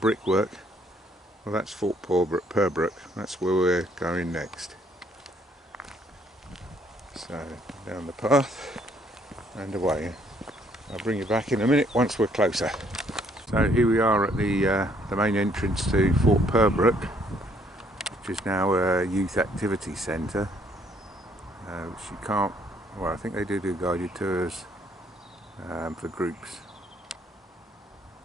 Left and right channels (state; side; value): normal; both; correlation 0.66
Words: Well, that's Fort Purbrook. That's where we're going next. So down the path and away. I'll bring you back in a minute once we're closer. So here we are at the main entrance to Fort Purbrook, which is now a youth activity centre, which you can't, well, I think they do guided tours for groups.